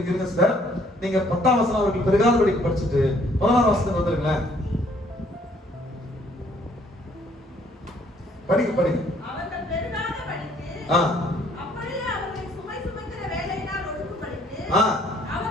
சார், நீங்க 10ஆம் வசனம் அவர்கள் பெருகாத படிக்கு படிச்சுட்டு 16ஆம் வசனத்துக்கு வந்துருங்களேன். படிங்க. அவர்கள் பெருகாத படிக்கு, அப்படியே அவர்களை சுமை சுமக்கிற வேலையினால் ஒடுக்கும்படிக்கு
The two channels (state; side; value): normal; both; correlation 0.63